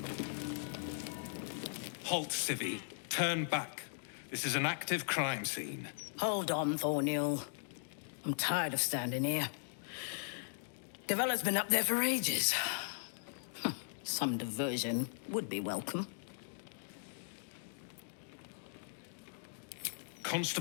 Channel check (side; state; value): right; silent; digital silence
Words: Halt, Civvy. Turn back. This is an active crime scene. Hold on, Thornhill. I'm tired of standing here. Devella's been up there for ages. Some diversion would be welcome.